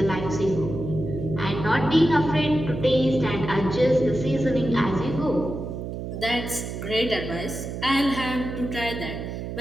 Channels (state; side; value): noise; right; hum, 6 dB below the sound